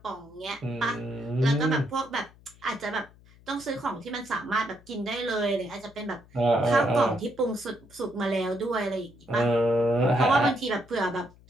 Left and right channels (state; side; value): noise; left; hum, 25 dB below the sound